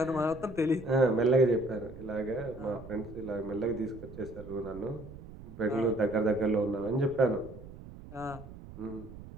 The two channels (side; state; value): right; noise; rumble, 15 dB below the sound